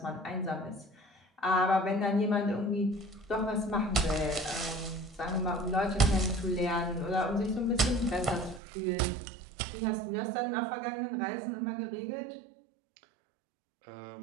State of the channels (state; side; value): drops out; left; at 8.6 s